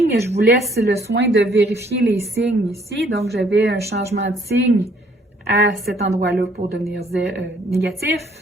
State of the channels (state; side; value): normal; both; correlation 0.63